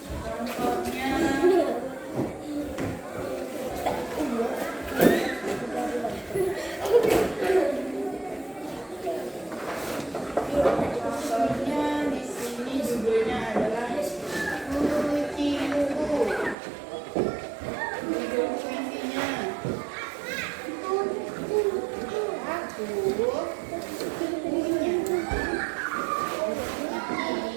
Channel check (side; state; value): left; drops out; at 16.6 s